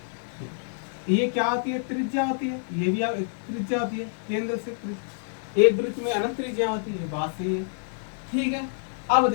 ये क्या होती है, त्रिज्या होती है, ये भी त्रिज्या होती है, केंद्र से एक वृत्त में अनंत त्रिज्या होती है, बात सही है। ठीक है, अब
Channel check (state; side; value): silent; right; digital silence